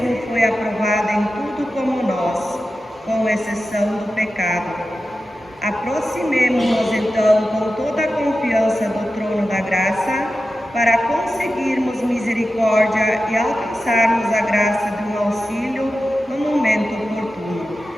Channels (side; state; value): both; normal; correlation 0.92